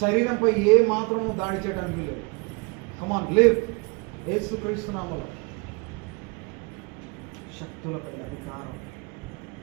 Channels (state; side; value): quieter; left; 30.9 dB